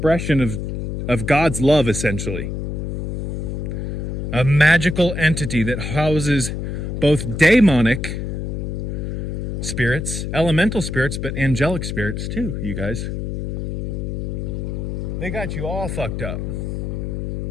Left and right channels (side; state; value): left; noise; hum, 4 dB below the sound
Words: of God's love, essentially. A magical entity that houses both demonic spirits, elemental spirits, but angelic spirits too, you guys. They got you all fucked up.